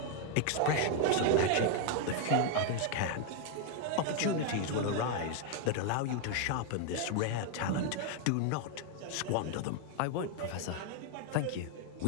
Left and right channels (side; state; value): both; different; correlation 0.00